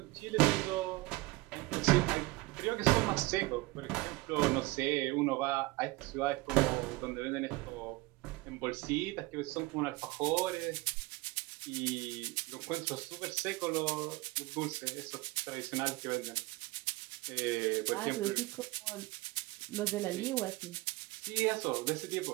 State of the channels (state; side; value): quieter; left; 21.6 dB